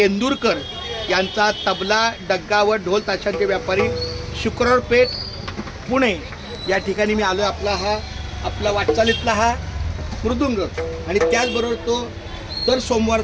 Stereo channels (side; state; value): both; identical; correlation 1.00